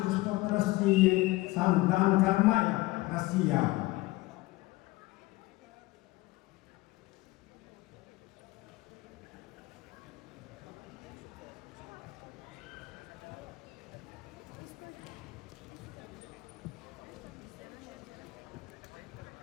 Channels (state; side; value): quieter; right; 20.0 dB